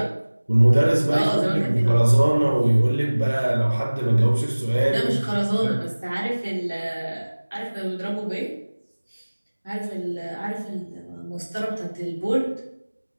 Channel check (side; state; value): both; inverted; correlation -1.00